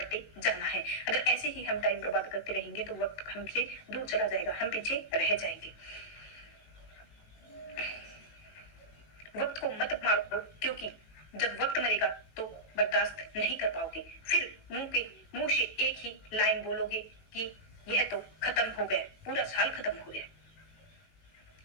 जाना है। अगर ऐसे ही हम टाइम बर्बाद करते रहेंगे तो वक्त हमसे दूर चला जाएगा, हम पीछे रह जाएंगे। वक्त को मत मारो, क्योंकि जब वक्त मरेगा तो बर्दाश्त नहीं कर पाओगे। फिर मुंह से एक ही लाइन बोलोगे कि यह तो खत्म हो गया, पूरा साल खत्म हो गया।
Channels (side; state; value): right; late; 18 ms